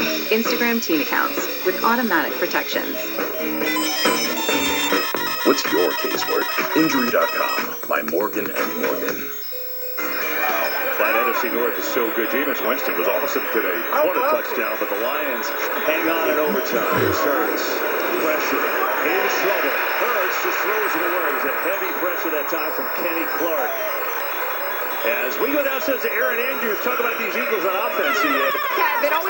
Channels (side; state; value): both; identical; correlation 1.00